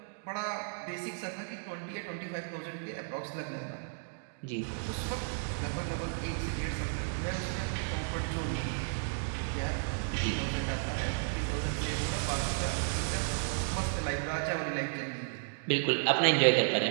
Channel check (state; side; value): silent; left; digital silence